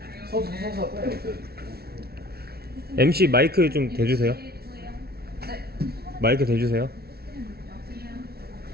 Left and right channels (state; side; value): late; left; 0.45 ms